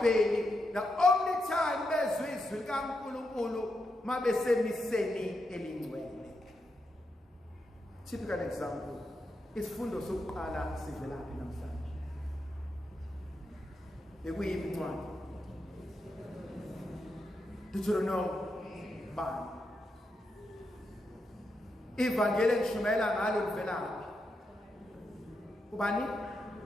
the only time bezwe izwi likaNkulunkulu mabesemiseni elingcwele? Typical example, isifundo sokuqala sivelaphi namhlanje? Bekuyiphi incwadi? Deuteronomy bani? Ivangeli engishumayela ngalo livelaphi? Ubani?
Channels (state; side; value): normal; both; correlation 0.85